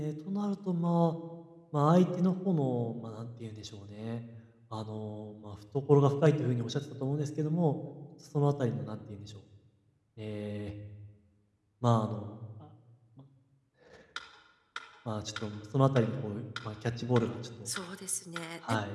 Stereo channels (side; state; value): both; identical; correlation 1.00